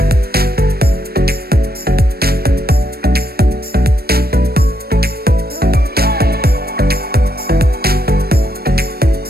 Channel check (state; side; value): late; left; 0.45 ms